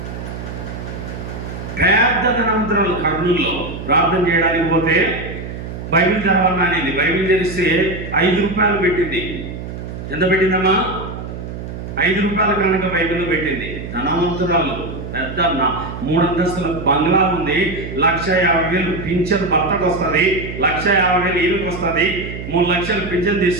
పెద్ద ధనవంతురాలు కర్నూలులో ప్రార్థన చేయడానికి పోతే బైబిల్ చదవాలని అనేది. బైబిల్ తెరిస్తే 5 రూపాయలు పెట్టింది. ఎంత పెట్టిందమ్మా? 5 రూపాయల కనుక బైబిల్లో పెట్టింది. ధనవంతురాలు, పెద్ద 3 అంతస్తుల బంగ్లా ఉంది. 1,50,000 పింఛన్ భర్తకు వస్తుంది, 1,50,000 ఈయనకు వస్తుంది, 3 లక్షలు పింఛన్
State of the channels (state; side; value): noise; right; hum, 9 dB below the sound